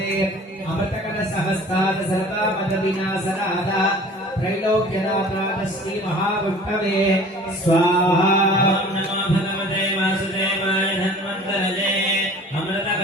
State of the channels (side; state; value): both; normal; correlation 0.45